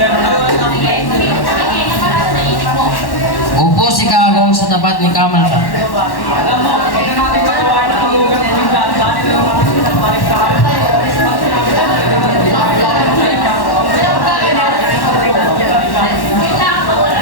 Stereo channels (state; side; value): late; right; 1.1 ms